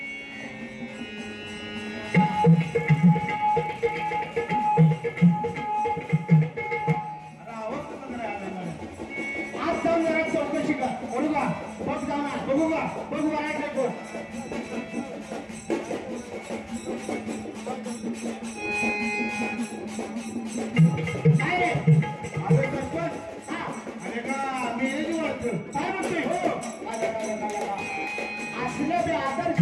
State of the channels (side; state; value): both; identical; correlation 1.00